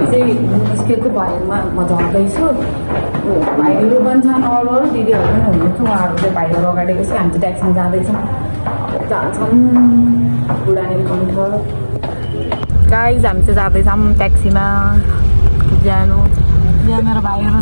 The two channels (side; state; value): both; inverted; correlation -1.00